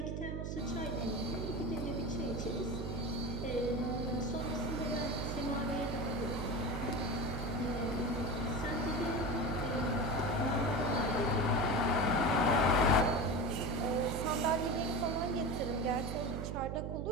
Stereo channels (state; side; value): noise; right; hum, 3 dB below the sound